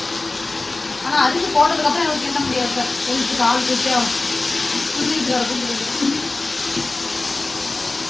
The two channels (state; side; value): quieter; right; 3.2 dB